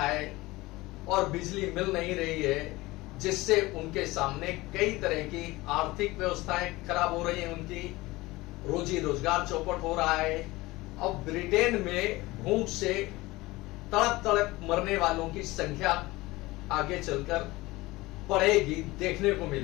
और बिजली मिल नहीं रही है जिससे उनके सामने कई तरह की आर्थिक व्यवस्थाएं खराब हो रही हैं, उनकी रोजी रोजगार चौपट हो रहा है। अब ब्रिटेन में भूख से तड़प तड़प मरने वालों की संख्या आगे चलकर बढ़ेगी, देखने को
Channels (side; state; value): right; quieter; 20.3 dB